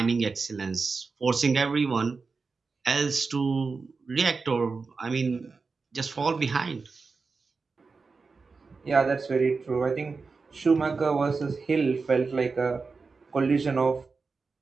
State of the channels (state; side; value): quieter; left; 4.5 dB